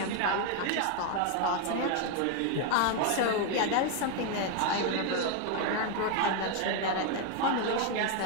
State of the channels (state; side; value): different; both; correlation 0.01